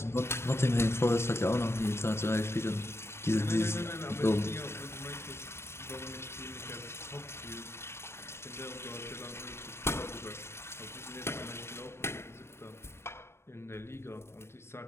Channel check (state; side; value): late; right; 0.12 ms